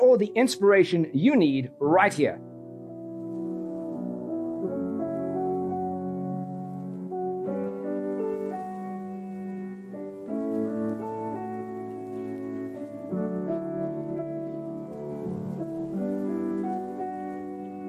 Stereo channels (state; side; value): identical; both; correlation 1.00